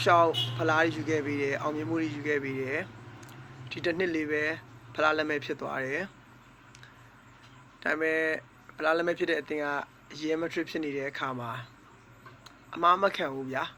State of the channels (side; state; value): both; identical; correlation 1.00